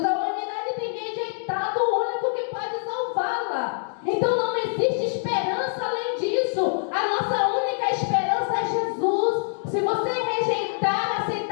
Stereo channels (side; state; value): right; silent; digital silence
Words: A humanidade tem rejeitado o único que pode salvá-la. Então não existe esperança além disso. A nossa única esperança é Jesus. Se você rejeitar,